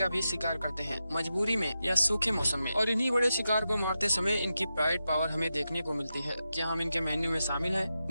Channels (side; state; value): both; inverted; correlation -0.90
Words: भी शिकार करते हैं, मजबूरी में या सूखे मौसम में। और इन्हीं बड़े शिकार को मारते समय इनकी प्राइड पावर हमें देखने को मिलती है। क्या हम इनके मेन्यू में शामिल है?